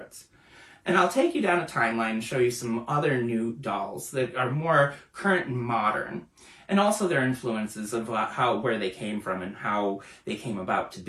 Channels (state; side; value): identical; both; correlation 1.00